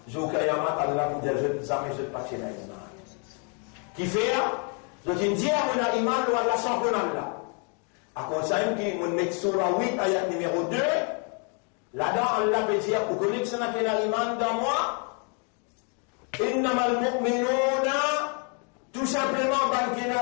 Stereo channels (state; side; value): quieter; right; 38.4 dB